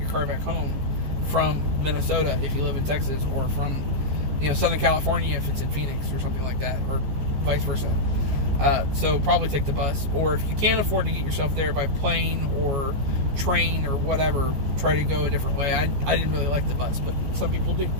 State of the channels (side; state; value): left; late; 14 ms